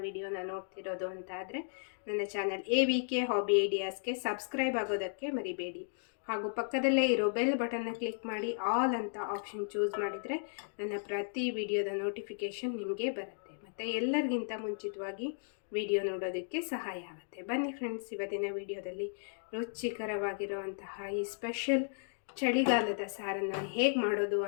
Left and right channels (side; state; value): right; silent; digital silence